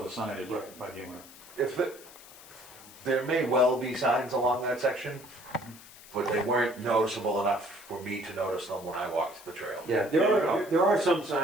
the signage Right. by the owner. If there may well be signs along that section, but they weren't noticeable enough for me to notice them when I walked the trail. Yeah, there are some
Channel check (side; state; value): left; noise; hiss, 19 dB below the sound